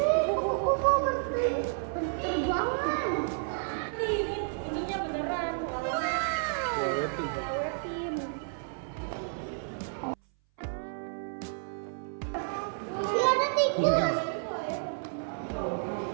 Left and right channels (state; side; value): silent; left; 57 dB below the other